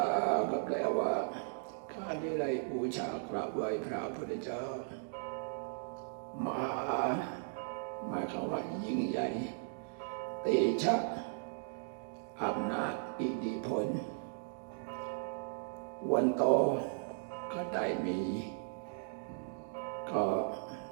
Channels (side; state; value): left; silent; digital silence